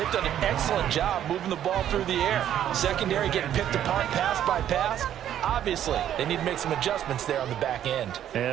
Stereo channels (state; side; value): quieter; left; 10.8 dB